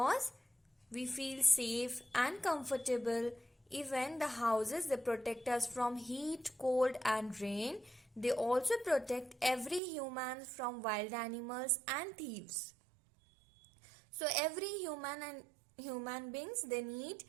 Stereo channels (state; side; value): drops out; left; at 9.8 s